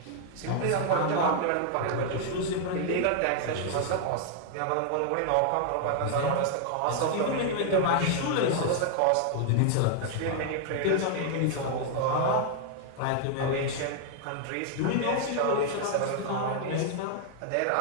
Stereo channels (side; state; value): both; different; correlation 0.00